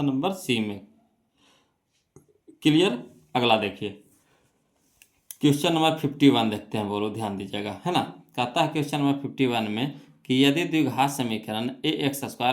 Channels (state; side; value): identical; both; correlation 1.00